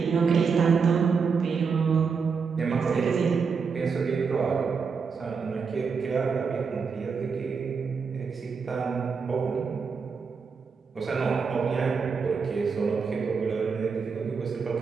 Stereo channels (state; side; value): quieter; left; 5.5 dB